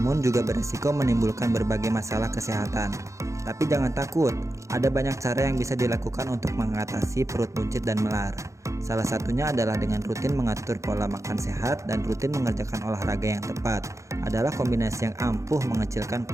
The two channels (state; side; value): late; left; 0.15 ms